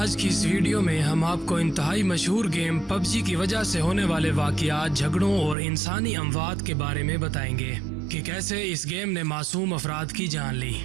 की इस वीडियो में हम आपको इंतहाई मशहूर गेम पबजी की वजह से होने वाले वाक़यात, झगड़ों और इंसानी अमवात के बारे में बताएंगे कि कैसे इस गेम ने मासूम अफराद की जान ली।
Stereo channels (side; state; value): left; drops out; at 5.6 s